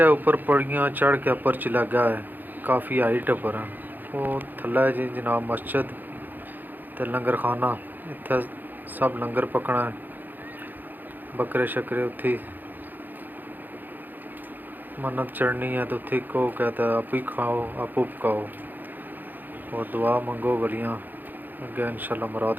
है उपर पड़ियाँ चढ़ के उपर च लगा है काफ़ी हाइट उपर है वो थल्ले जी जनाब मस्जिद ते लंगर खाना इत्थे सब लंगर पकना है बकरे शकरे उत्थे मन्नत चढ़नी है तो उत्थे को कहता है आप ही खाओ आप पकाओ और दुआ मंगो वलियाँ अगे इंशाल्लाह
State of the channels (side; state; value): left; late; 0.088 ms